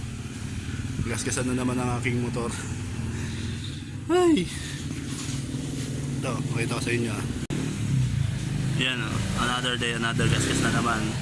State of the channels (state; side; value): identical; both; correlation 1.00